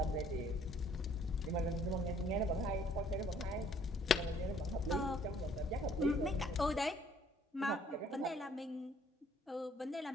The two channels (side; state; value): both; normal; correlation 0.60